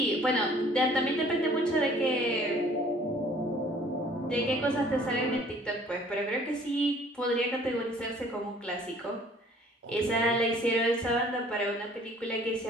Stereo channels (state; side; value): normal; both; correlation 0.55